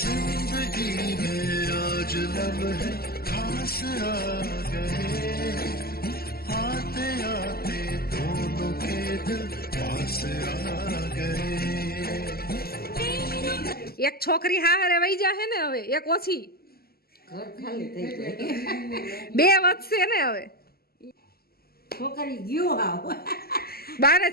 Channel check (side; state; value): right; late; 0.45 ms